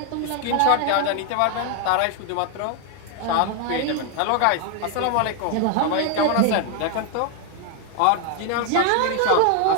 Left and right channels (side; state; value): both; different; correlation 0.01